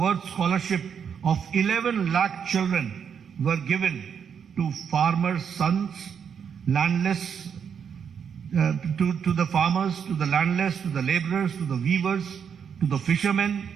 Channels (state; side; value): quieter; left; 7.4 dB